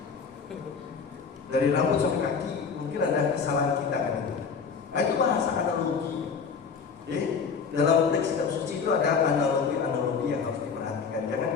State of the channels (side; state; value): right; quieter; 5.7 dB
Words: Dari rambut sampai kaki, mungkin ada kesalahan kita gitu. Nah, itu bahasa analogi. Jadi dalam teks kitab suci itu ada analogi-analogi yang harus diperhatikan. Jangan